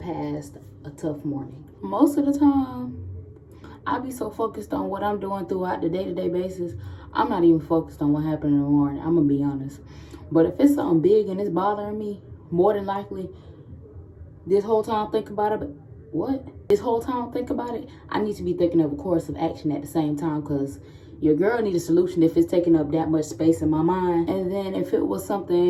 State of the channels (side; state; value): both; identical; correlation 1.00